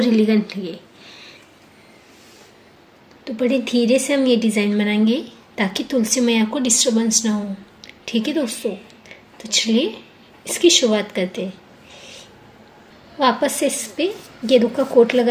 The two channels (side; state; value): both; identical; correlation 1.00